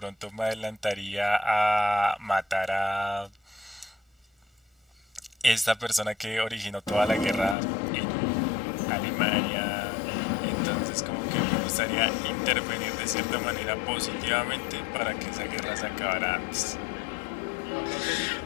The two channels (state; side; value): drops out; right; at 7.6 s